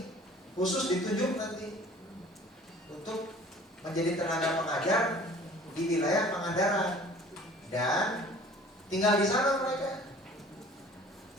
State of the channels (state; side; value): normal; both; correlation 0.49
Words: khusus ditunjuk nanti untuk menjadi tenaga pengajar di wilayah Pangandaran dan tinggal di sana mereka.